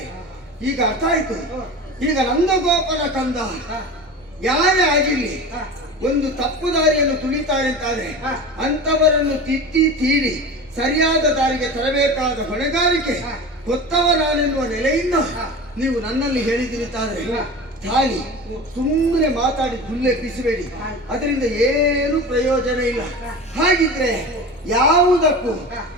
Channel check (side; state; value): both; normal; correlation 0.31